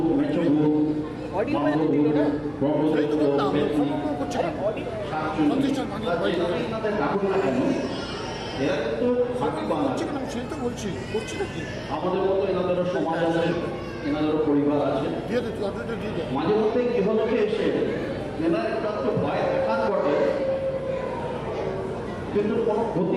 মেচো ভূত, আমাদের মতো এনাদেরও সমাজ আছে, এনাদেরও পরিবার আছে। মাঝে মধ্যে গৃহলোকে এসে এনার একটু ভয় দেখার বটে, কিন্তু কোনো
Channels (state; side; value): identical; both; correlation 1.00